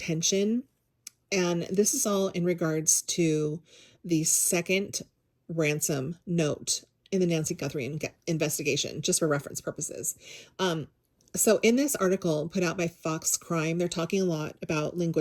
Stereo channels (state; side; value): identical; both; correlation 1.00